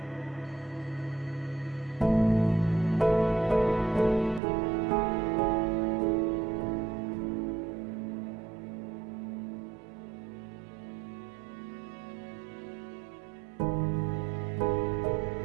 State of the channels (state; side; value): drops out; left; at 4.4 s